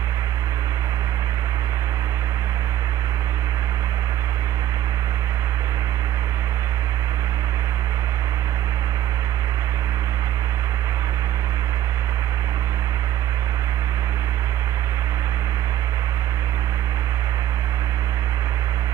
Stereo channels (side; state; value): left; quieter; 12.2 dB